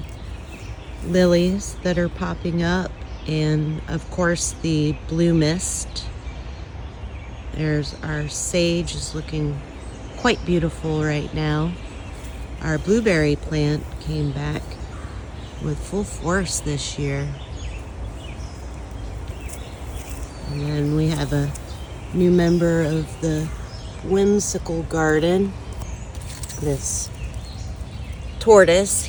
lilies that are popping up, and of course the blue mist. There's our sage is looking quite beautiful right now. Our blueberry plant came back with full force this year. And then we have a new member of the whimsical garden, this tortoise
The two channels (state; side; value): identical; both; correlation 1.00